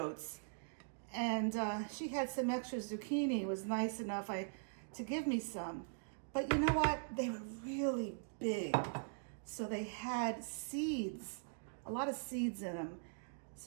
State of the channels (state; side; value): silent; left; digital silence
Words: And she had some extra zucchini. It was nice enough to give me some. But you know what? They were really big. So they had seeds, a lot of seeds in them.